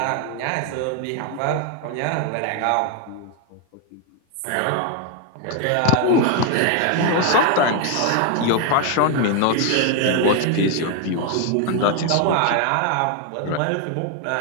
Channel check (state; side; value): different; both; correlation 0.01